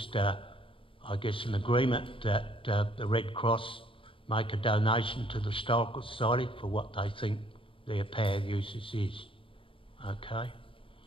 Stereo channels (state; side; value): late; right; 0.26 ms